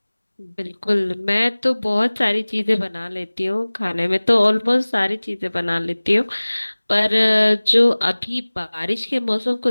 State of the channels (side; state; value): both; inverted; correlation -1.00